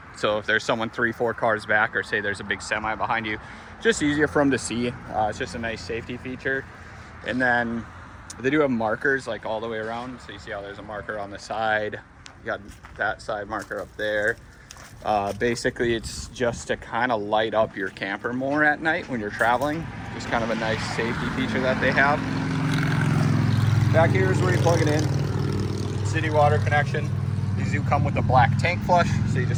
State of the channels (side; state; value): both; identical; correlation 1.00